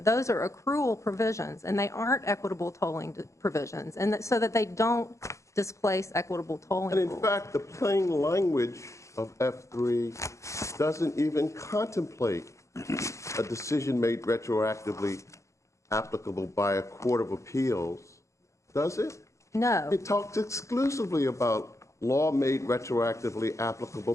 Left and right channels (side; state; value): right; late; 0.15 ms